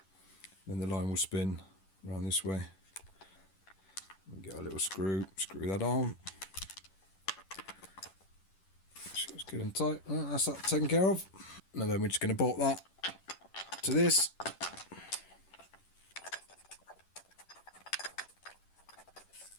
Then the line will spin around this way. We'll get a little screw that on. So it's good and tight. Right, that's that taken care of. And then we're just going to bolt that to this.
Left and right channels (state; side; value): late; right; 10 ms